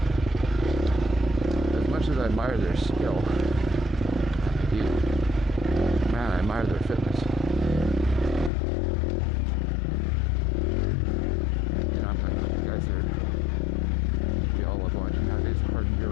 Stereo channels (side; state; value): right; drops out; at 8.5 s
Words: as much as I admire their skill, I do, man, I admire their fitness. You know, I'm talking about the guys that we all love watching nowadays, hard